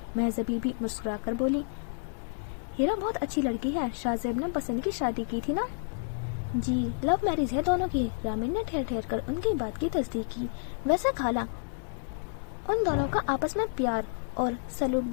महज़बी भी मुस्कुरा कर बोली, हीरा बहुत अच्छी लड़की है, शाहजेब ने पसंद की शादी की थी ना? जी, लव मैरिज है दोनों की। रामीन ने ठहर ठहर कर उनकी बात की तस्दीक की। वैसे खाला, उन दोनों का आपस में प्यार और सलूक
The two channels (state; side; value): silent; right; digital silence